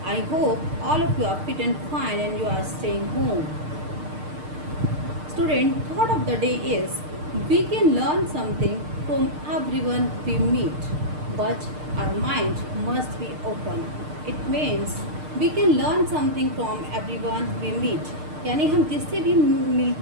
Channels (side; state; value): left; late; 6.6 ms